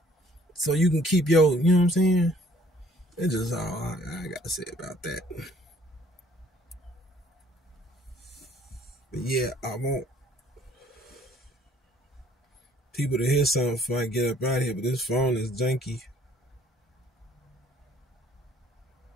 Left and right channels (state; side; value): normal; both; correlation 0.59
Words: so you can keep your. You know what I'm saying? It's just all I gotta say about that. But yeah, I want people to hear something before I get up out of here. But this phone is janky.